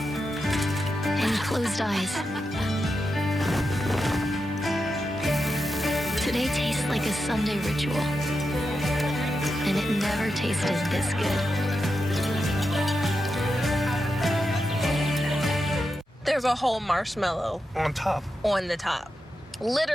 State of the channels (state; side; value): normal; both; correlation 0.88